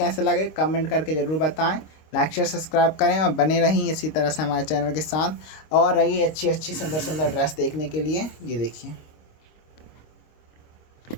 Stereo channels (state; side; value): late; right; 26 ms